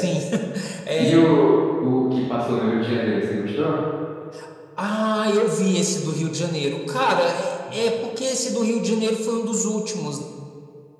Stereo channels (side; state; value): both; identical; correlation 1.00